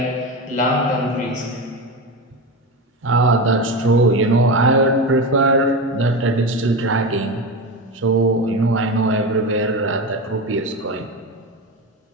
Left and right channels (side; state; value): both; normal; correlation 0.21